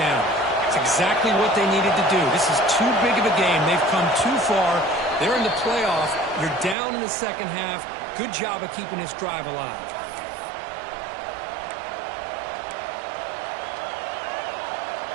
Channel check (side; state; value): left; drops out; at 6.8 s